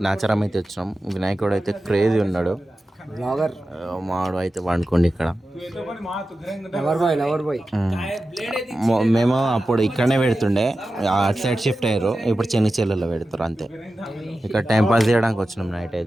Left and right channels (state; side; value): normal; both; correlation 0.93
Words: నాచారం అయితే వచ్చినాం. వినాయకుడు అయితే క్రేజీ ఉన్నాడు. మావాడు అయితే వండుకోండి ఇక్కడ. మేము అప్పుడు ఇక్కడనే పెడుతుండే, అటు సైడ్ షిఫ్ట్ అయ్యారు, ఇప్పుడు చెన్నిచెల్లలో పెడతారు అంతే. ఇక్కడ టైం పాస్ చేయడానికి వచ్చినాం నైట్